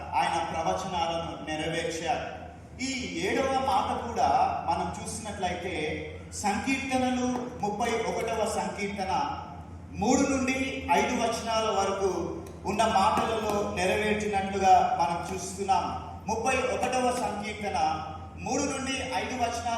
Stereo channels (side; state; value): both; identical; correlation 1.00